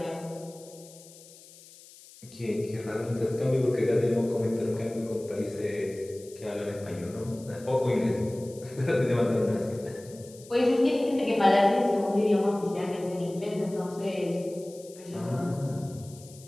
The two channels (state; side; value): noise; left; hiss, 21 dB below the sound